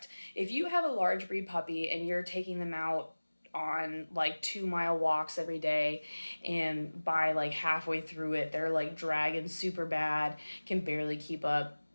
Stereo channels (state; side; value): inverted; both; correlation -1.00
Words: If you have a large breed puppy and you're taking them out on like 2 mile walks every day, and by like halfway through it they're like dragging super bad, can barely keep up,